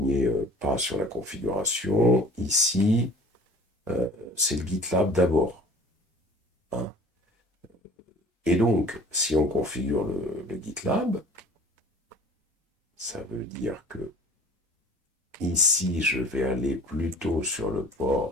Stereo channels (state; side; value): normal; both; correlation 0.46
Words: pas sur la configuration, ici, c'est le GitLab d'abord, hein. Et donc, si on configure le GitLab, ça veut dire que ici, je vais aller plutôt sur le